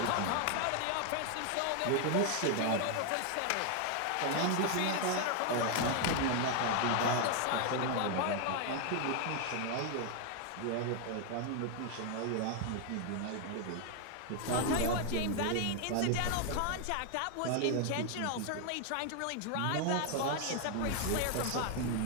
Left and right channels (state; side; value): different; both; correlation 0.00